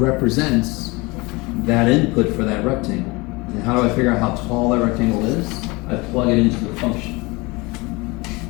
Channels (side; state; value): right; quieter; 24.8 dB